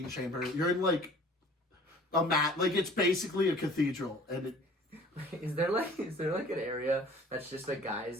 chamber. You're in like a mat, like it's basically a cathedral, and it, Is there like an area that's just a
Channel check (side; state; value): both; normal; correlation 0.49